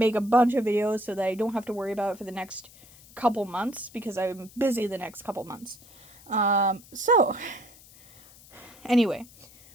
a bunch of videos so that I don't have to worry about it for the next couple months, because I'm busy the next couple months. So, anyway,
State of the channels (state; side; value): noise; left; hiss, 23 dB below the sound